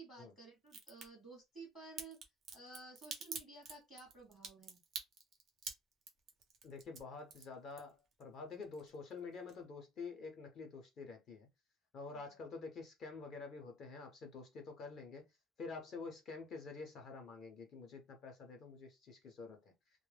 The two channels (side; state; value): both; normal; correlation 0.51